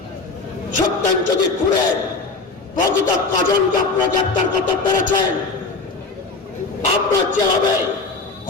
সত্যেন চৌধুরী খুনের প্রকৃত কজনকে আপনারা গ্রেপ্তার করতে পেরেছেন? আপনার যেভাবে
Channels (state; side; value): quieter; right; 3.8 dB